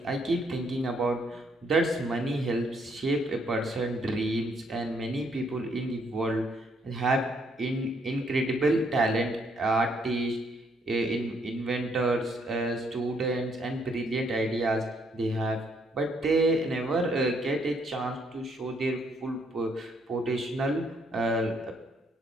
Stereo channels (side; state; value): both; normal; correlation 0.71